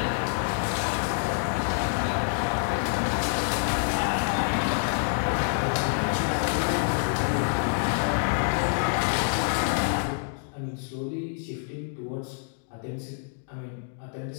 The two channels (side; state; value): right; silent; digital silence